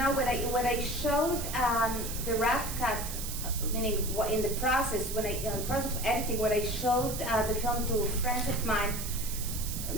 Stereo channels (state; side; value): noise; right; hiss, 7 dB below the sound